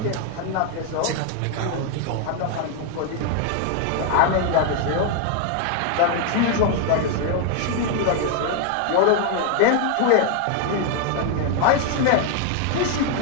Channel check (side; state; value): both; different; correlation 0.00